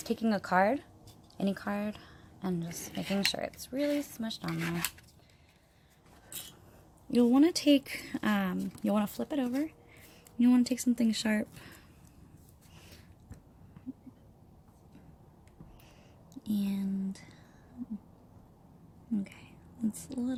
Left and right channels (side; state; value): both; identical; correlation 1.00